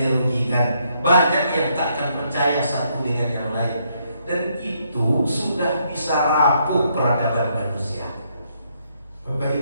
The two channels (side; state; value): both; inverted; correlation -0.73